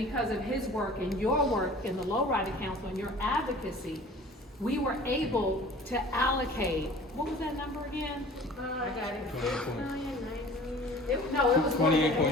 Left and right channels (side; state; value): both; normal; correlation 0.45